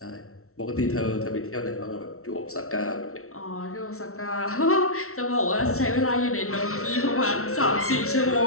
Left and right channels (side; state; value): right; late; 0.63 ms